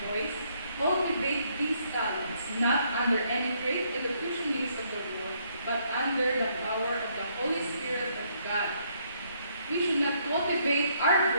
voice. Cultivate these talents, not under any great elocutionist of the world, but under the power of the Holy Spirit of God. We should not cultivate our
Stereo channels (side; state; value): both; inverted; correlation -0.70